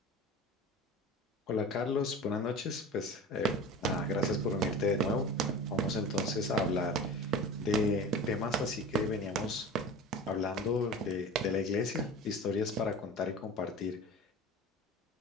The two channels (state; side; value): normal; both; correlation 0.35